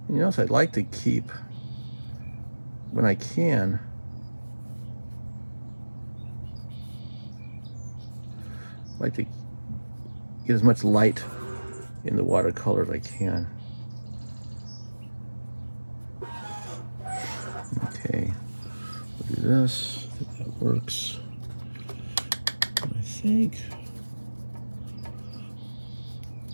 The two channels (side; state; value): both; inverted; correlation -1.00